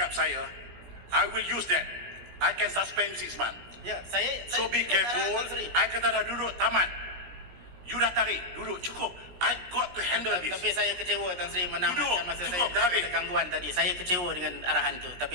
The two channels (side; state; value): left; late; 17 ms